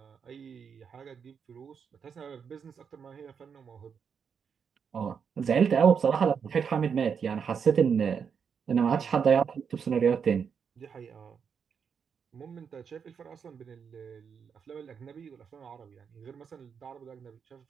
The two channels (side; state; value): left; quieter; 6.7 dB